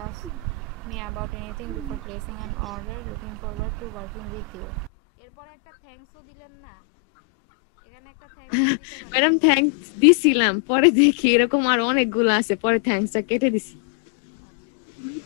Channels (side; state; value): right; drops out; at 4.9 s